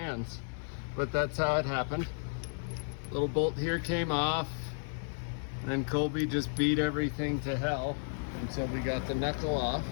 but that's how it happened. Little bolt here came off, and then Colby just beat everything to hell. until we got the knuckle off.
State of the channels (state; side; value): silent; right; 56 dB below the other